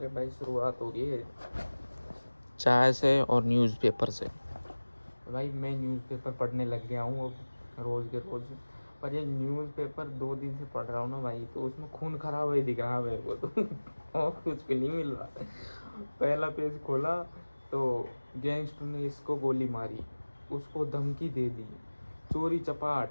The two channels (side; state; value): both; inverted; correlation -1.00